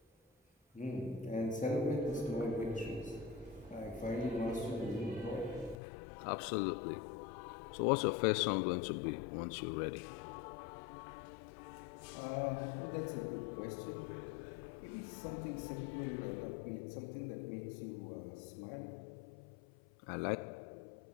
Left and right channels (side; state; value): right; drops out; at 5.8 s